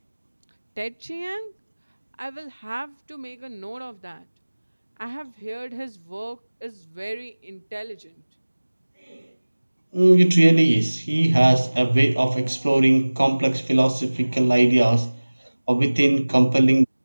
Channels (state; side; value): inverted; both; correlation -1.00